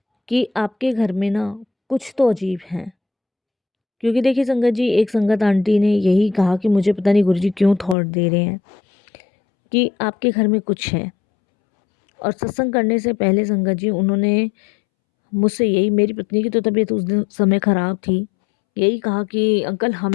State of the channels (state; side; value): drops out; right; at 8.0 s